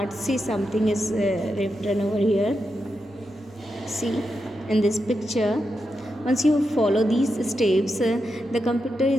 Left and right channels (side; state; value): both; normal; correlation 0.87